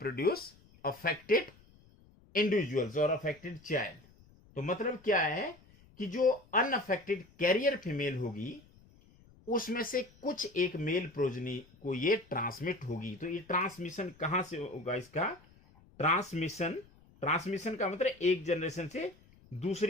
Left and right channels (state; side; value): noise; left; rumble, 27 dB below the sound